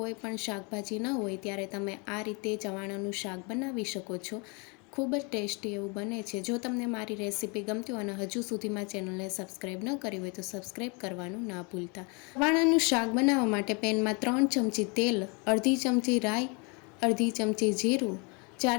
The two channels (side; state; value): right; quieter; 32.1 dB